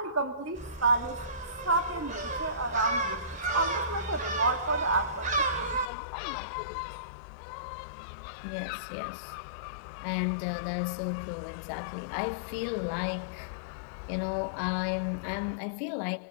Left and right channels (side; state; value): right; drops out; at 5.9 s